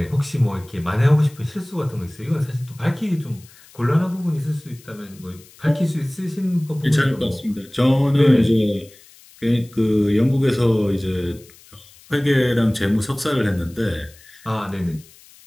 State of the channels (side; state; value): left; noise; hiss, 25 dB below the sound